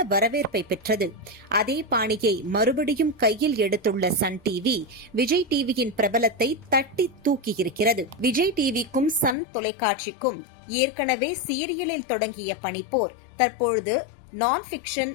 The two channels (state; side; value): drops out; right; at 9.3 s